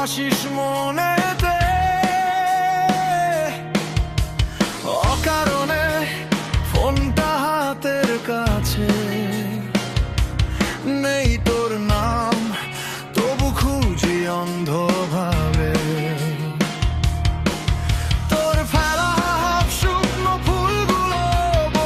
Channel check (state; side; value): identical; both; correlation 1.00